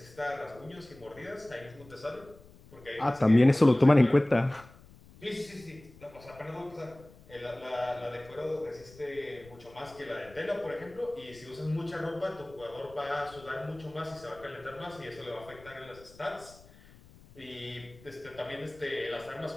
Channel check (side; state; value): left; noise; rumble, 23 dB below the sound